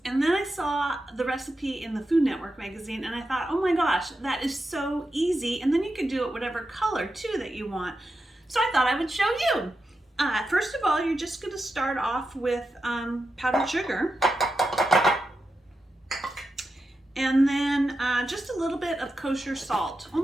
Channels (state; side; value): normal; both; correlation 0.89